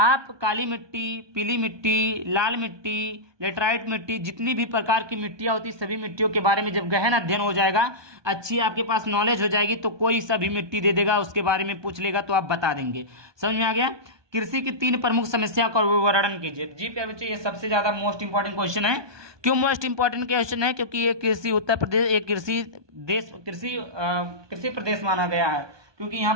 काली मिट्टी, पीली मिट्टी, लाल मिट्टी, लेटराइट मिट्टी, जितनी भी प्रकार की मिट्टियां होती सभी मिट्टियों के बारे में जब गहन अध्ययन हो जाएगा, अच्छी आपके पास नॉलेज हो जाएगी, तो कोई सभी मिट्टी दे देगा, उसके बारे में पूछ लेगा तो आप बता देंगे। समझ में आ गया। कृषि की 3 प्रमुख समस्या का वर्णन कीजिए। जी प्यारे बच्चों ये सबसे ज्यादा मोस्ट इंपॉर्टेंट क्वेश्चन है। क्यों मोस्ट इंपॉर्टेंट क्वेश्चन है, क्योंकि ये कृषि उत्तर प्रदेश एक कृषि प्रदेश माना गया है, क्योंकि यहाँ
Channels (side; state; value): left; late; 1.2 ms